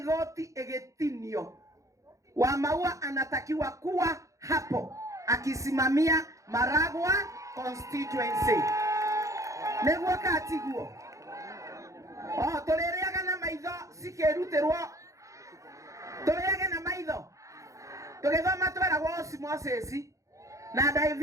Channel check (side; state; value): left; late; 0.15 ms